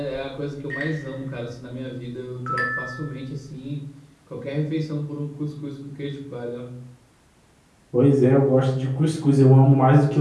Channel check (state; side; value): identical; both; correlation 1.00